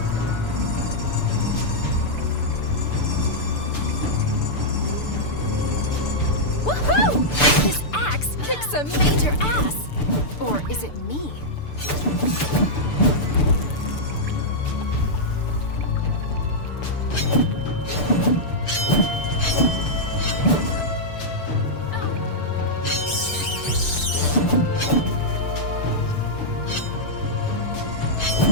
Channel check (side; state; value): right; late; 6.8 ms